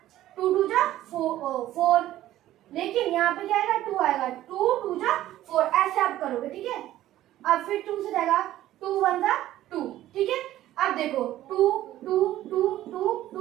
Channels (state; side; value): quieter; left; 14.0 dB